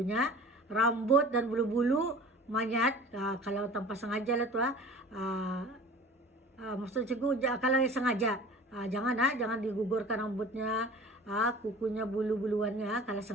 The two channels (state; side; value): normal; both; correlation 0.41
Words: Rambut dan bulu-bulu mayat, kalau tanpa sengaja lah tuh, maksud cikgu kalau sengaja, jangan digugurkan rambutnya, kukunya, bulu-buluannya kalau